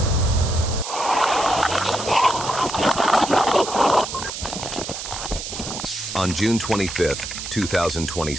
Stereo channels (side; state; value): right; noise; hiss, 7 dB below the sound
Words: On June 25,